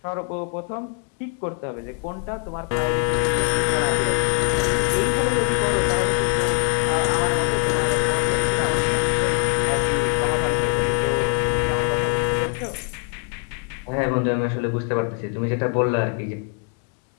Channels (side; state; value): right; quieter; 36.9 dB